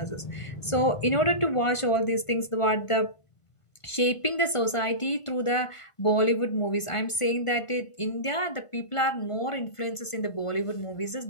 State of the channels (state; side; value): late; right; 1.5 ms